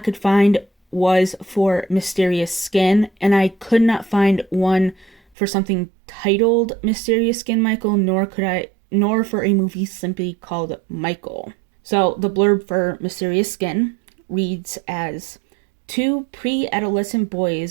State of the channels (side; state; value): left; drops out; at 5.2 s